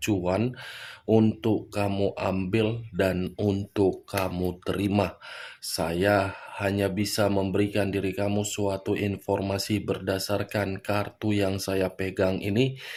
untuk kamu ambil dan untuk kamu terima. Saya hanya bisa memberikan diri kamu suatu informasi berdasarkan kartu yang saya pegang ini.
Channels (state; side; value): identical; both; correlation 1.00